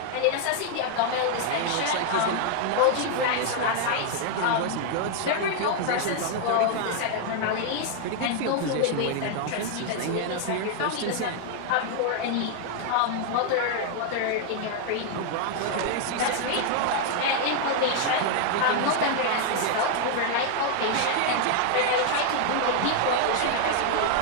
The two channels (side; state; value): both; different; correlation 0.00